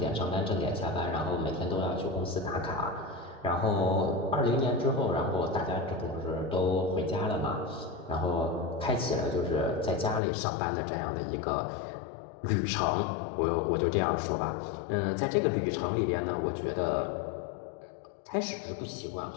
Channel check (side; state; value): right; drops out; at 10.2 s